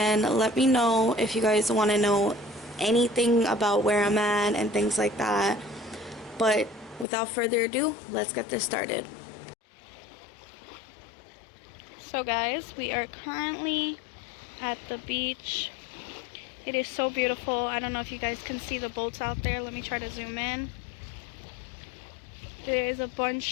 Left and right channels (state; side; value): drops out; right; at 7.1 s